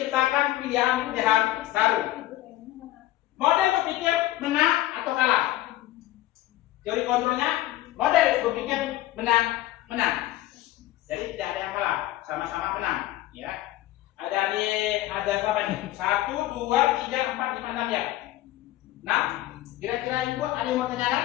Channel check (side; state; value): right; quieter; 15.5 dB